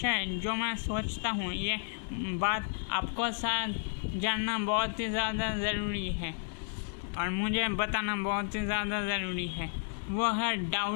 जो मैं सोचता हूँ ये बात आपको साथ जानना बहुत ही ज़्यादा ज़रूरी है और मुझे बताना बहुत ही ज़्यादा ज़रूरी है। वो है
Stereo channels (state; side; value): silent; right; digital silence